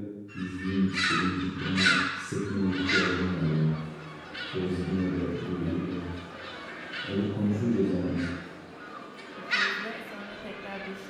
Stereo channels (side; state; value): both; identical; correlation 1.00